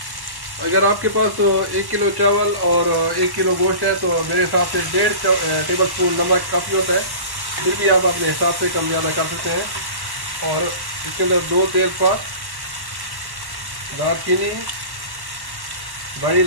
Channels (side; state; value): left; late; 1.1 ms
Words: अगर आपके पास 1 किलो चावल और 1 किलो गोश्त है तो मेरे हिसाब से 1.5 टेबल स्पून नमक काफ़ी होता है, फिर भी आप अपने हिसाब से कम ज़्यादा कर सकते हैं। और इसके अंदर 2 तेज़पात, दालचीनी, बड़ी